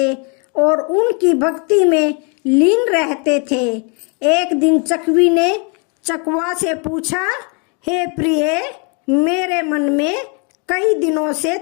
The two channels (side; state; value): right; quieter; 35.6 dB